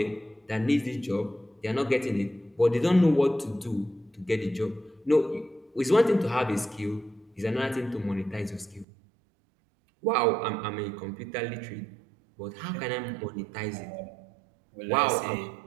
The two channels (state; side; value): drops out; left; at 8.8 s